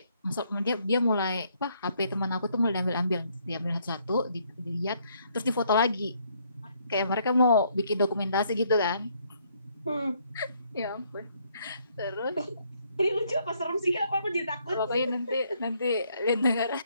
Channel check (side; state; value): both; inverted; correlation -0.69